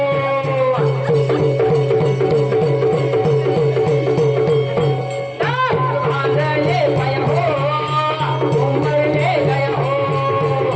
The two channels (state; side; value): identical; both; correlation 1.00